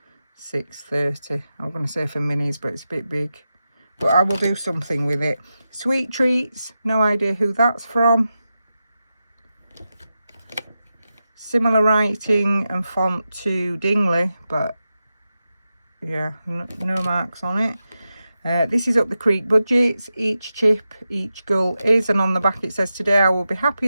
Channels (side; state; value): both; inverted; correlation -0.90